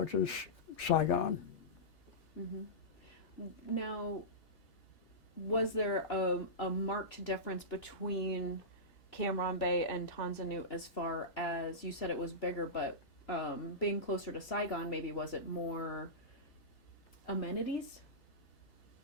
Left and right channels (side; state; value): right; late; 3.4 ms